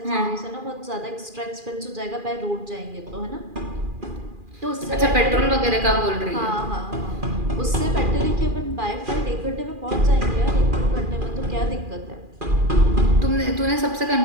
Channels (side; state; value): left; late; 2.4 ms